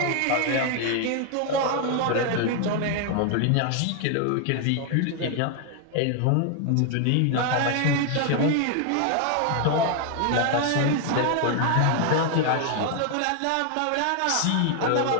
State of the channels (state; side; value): different; both; correlation 0.00